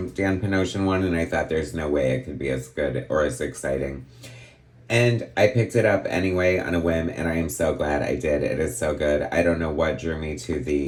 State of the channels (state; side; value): identical; both; correlation 1.00